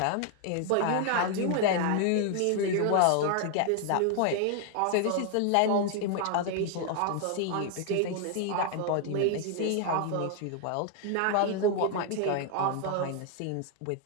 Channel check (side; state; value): both; different; correlation 0.00